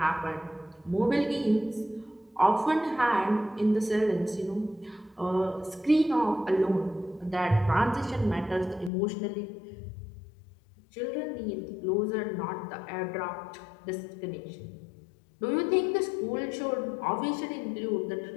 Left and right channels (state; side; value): drops out; right; at 8.9 s